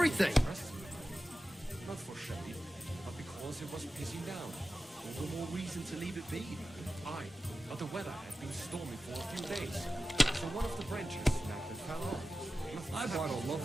Not for shade, but because it was pissing down. All the more reason to leave it be. Aye, but the weather had been stormy for a few days. So one of the branches snapped and fell off. I bought a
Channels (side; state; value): both; normal; correlation 0.94